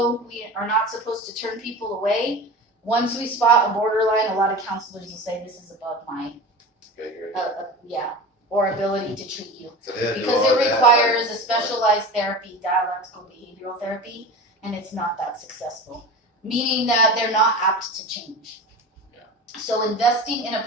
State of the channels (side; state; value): both; normal; correlation 0.31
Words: we are not supposed to turn people away. Once we spot a borderline, a lot of counselors will say this is above my Okay, or ability to treat you. so they'll do Because all it that, requires a specialized therapy, dialectical behavioral therapy, and it's not that successful. Meaning that they're not apt to change. So investing in a